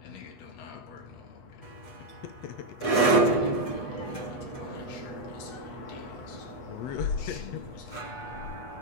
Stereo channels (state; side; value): late; right; 8.2 ms